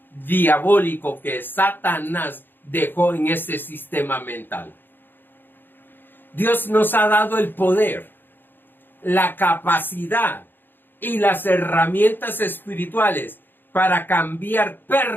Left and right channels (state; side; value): late; right; 0.096 ms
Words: diabólico que Satanás dejó en este sistema mental. Dios nos ha dado el poder, la capacidad y las herramientas espirituales para cambiar